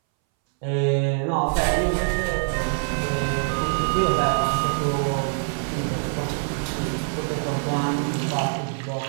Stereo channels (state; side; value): silent; left; 61 dB below the other